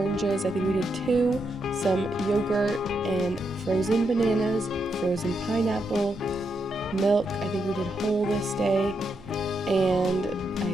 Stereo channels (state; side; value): noise; right; rumble, 23 dB below the sound